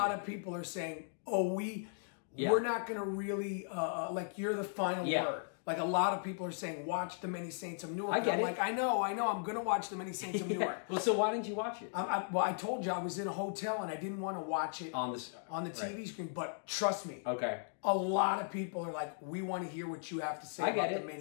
of people are saying, "Oh, we're not going to really like you're the final word." Like a lot of people are saying, "Watch The Many Saints of Newark." I get it. Like I know, I'm going to watch The Many Saints of Newark. Well, so why didn't you watch it? Well, I told you I was in a hotel and I didn't want to watch it on the TV screen. But trust me, a lot of people are like, "We want to hear what you have to say about The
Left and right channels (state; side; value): silent; right; digital silence